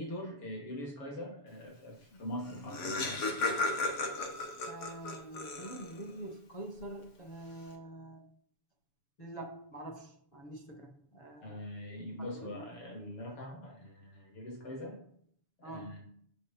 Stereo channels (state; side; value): late; right; 7.1 ms